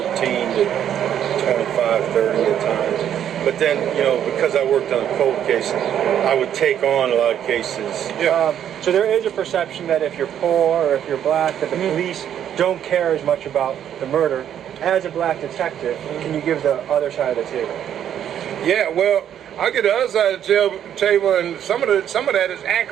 to 25, 30 at times. But then, you know, because I worked on a cold case, I would take on a lot of cases. So there is a perception that if you're poor or if you're black, that the police don't care as much about the murder. As a black detective, can you give the other side of the table? Yeah, well, I get the other side of the table, and some of that is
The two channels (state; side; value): quieter; left; 9.9 dB